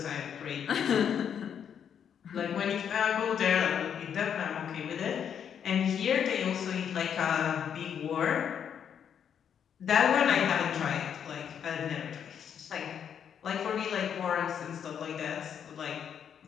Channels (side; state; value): right; quieter; 8.3 dB